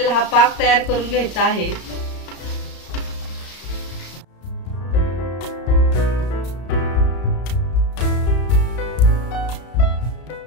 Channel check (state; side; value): late; right; 33 ms